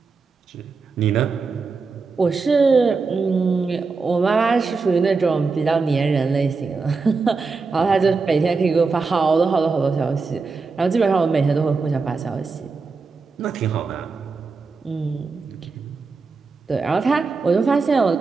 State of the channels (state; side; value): quieter; left; 4.5 dB